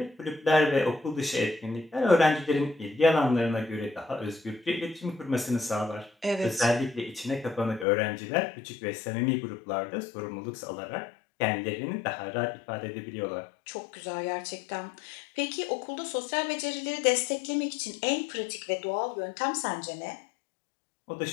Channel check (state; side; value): drops out; right; at 7.9 s